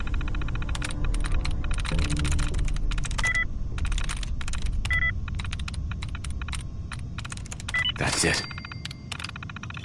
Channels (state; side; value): identical; both; correlation 1.00